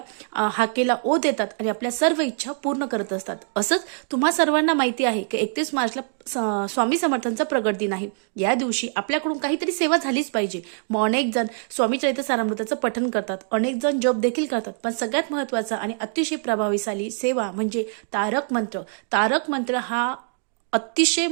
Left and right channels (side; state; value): left; silent; 56 dB below the other